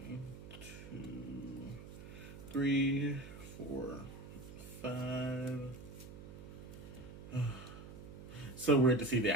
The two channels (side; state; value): right; noise; hum, 13 dB below the sound